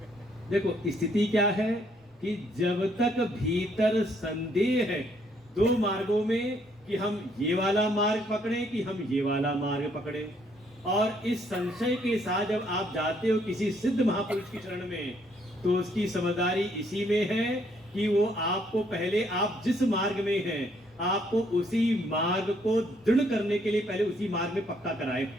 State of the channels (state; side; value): normal; both; correlation 0.69